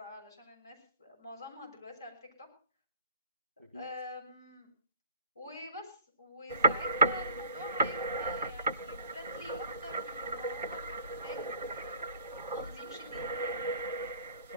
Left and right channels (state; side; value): inverted; both; correlation -0.52